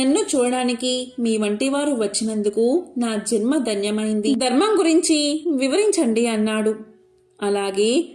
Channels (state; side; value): identical; both; correlation 1.00